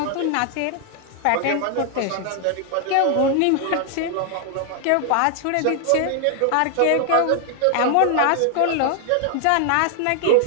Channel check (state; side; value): different; both; correlation 0.00